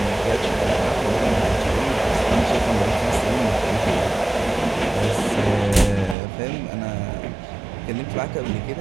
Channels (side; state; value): left; drops out; at 6.2 s